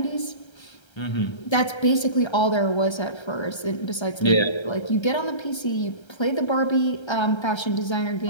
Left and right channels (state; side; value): late; right; 1.3 ms